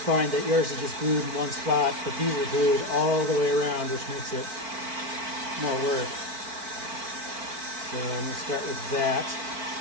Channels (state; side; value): late; left; 4.5 ms